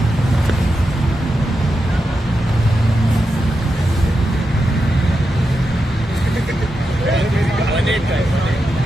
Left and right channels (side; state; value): both; normal; correlation 0.88